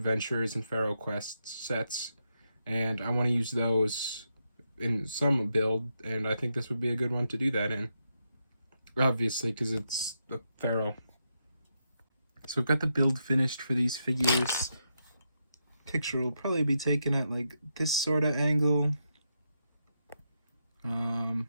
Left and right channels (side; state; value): both; inverted; correlation -0.83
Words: and Pharaoh Quest sets, and I want to use those in some build, and I think this would be a good one to do that in. Obviously, because it's the Pharaoh. So I've got the build finished for these figures. Picture will probably be taken at like this sort of angle.